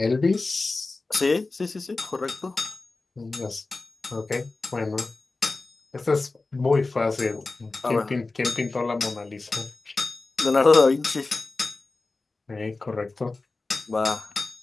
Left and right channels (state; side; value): quieter; right; 3.5 dB